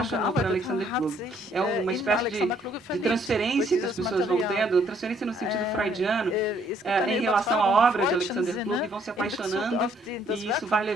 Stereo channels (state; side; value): normal; both; correlation 0.66